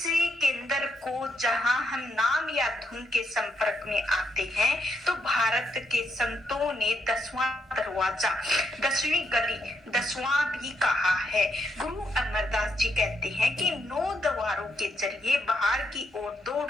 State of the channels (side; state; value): both; normal; correlation 0.78